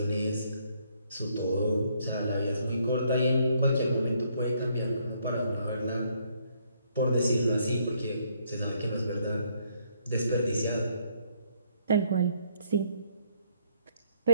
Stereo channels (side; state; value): both; inverted; correlation -0.69